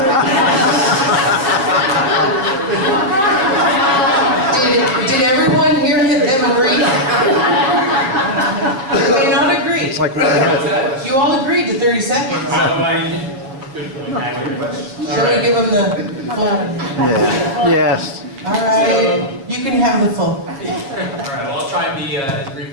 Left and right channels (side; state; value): left; late; 7.4 ms